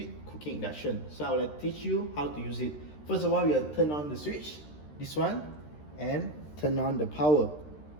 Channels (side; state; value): right; late; 13 ms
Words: Cooking Induction. So I will teach you how to use it. First of all, you will turn on the switch, this one, and turn on the power,